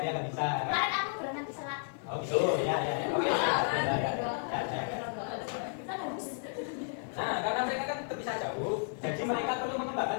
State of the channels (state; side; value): silent; right; 56 dB below the other